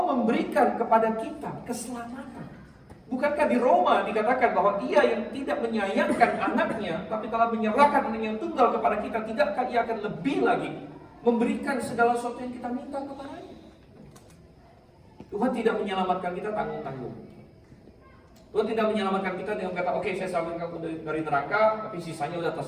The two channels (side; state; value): both; identical; correlation 1.00